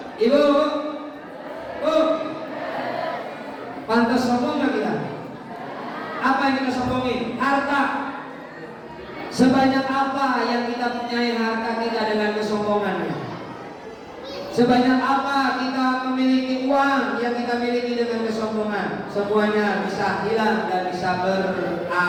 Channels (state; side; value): identical; both; correlation 1.00